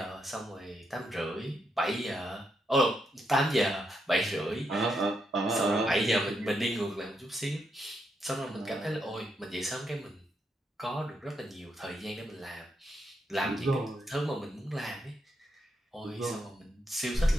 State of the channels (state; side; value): normal; both; correlation 0.81